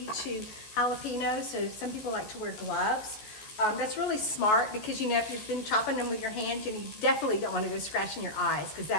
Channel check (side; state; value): right; late; 14 ms